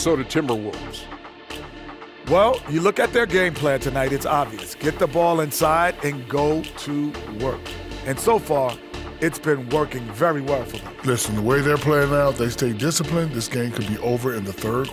Timberwolves. Well, you look at their game plan tonight, it's obvious. Get the ball inside and go to work. And so far, it's been working very well for them. Listen, the way they're playing now, if they stay disciplined, this game could be over in the third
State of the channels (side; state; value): both; identical; correlation 1.00